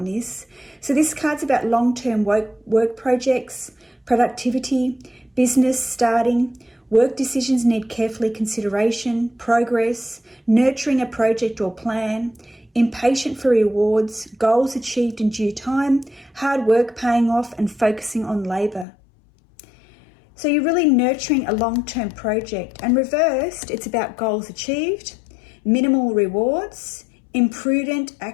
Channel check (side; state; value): right; drops out; at 18.9 s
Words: this. So this card's about long-term work projects, productivity, business starting. Work decisions need carefully consideration, progress, nurturing a project or plan, impatient for rewards, goals achieved in due time, hard work paying off, and focusing on labour. So you're really nurturing a long-term project. And reversed, it's about goals achieved, minimal rewards, imprudent